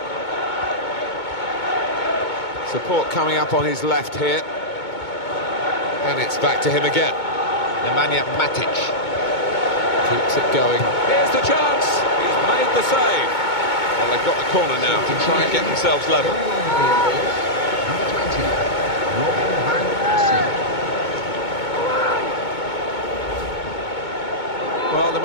Support coming up on his left here. And it's back to him again. Nemanja Matic. Keeps it going. Here's the chance. He's made the save. Well, they've got the corner now to try and get themselves level. Well, the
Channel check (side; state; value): right; late; 2.2 ms